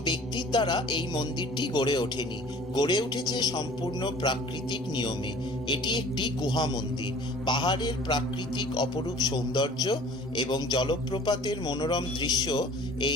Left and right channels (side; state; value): both; normal; correlation 0.48